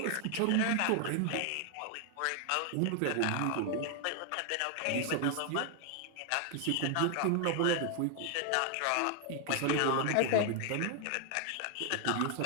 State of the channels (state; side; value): different; both; correlation 0.00